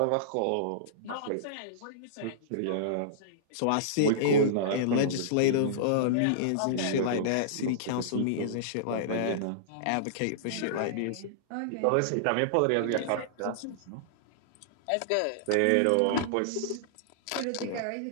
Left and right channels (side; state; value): both; different; correlation -0.02